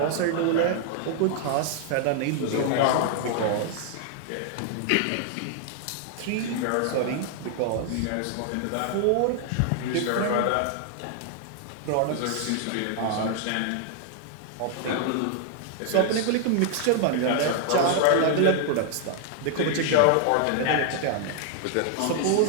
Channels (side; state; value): both; different; correlation 0.00